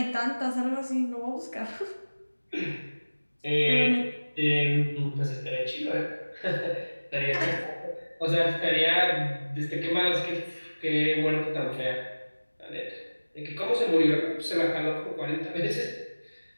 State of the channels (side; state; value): both; inverted; correlation -1.00